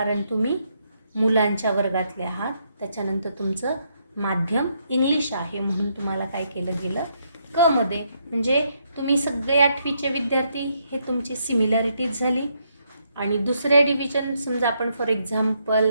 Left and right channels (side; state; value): both; inverted; correlation -0.76